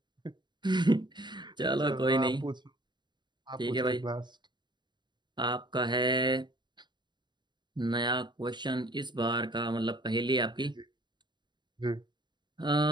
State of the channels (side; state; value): left; late; 0.22 ms